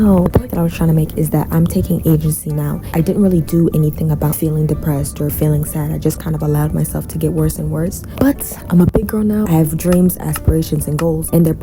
The point that I was trying to make is that I'm taking agency now. I didn't really do anything about feeling depressed or feeling sad. I just kind of allowed myself to get worse and worse. But I'm a big girl now. I have dreams, aspirations, and goals, and their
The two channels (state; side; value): identical; both; correlation 1.00